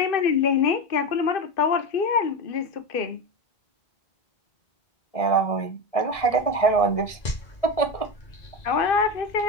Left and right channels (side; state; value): right; late; 1.7 ms